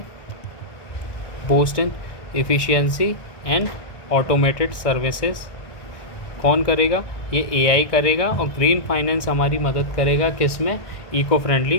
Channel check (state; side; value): late; right; 2.0 ms